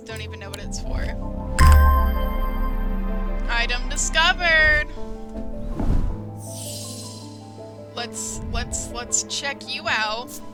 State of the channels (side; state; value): both; identical; correlation 1.00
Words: "Don't even know what it's for." Item discovered! Let's check you out.